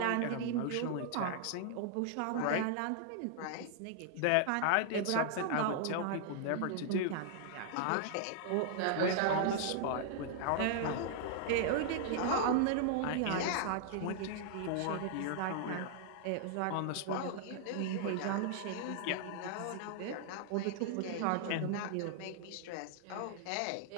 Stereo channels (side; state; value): both; different; correlation -0.01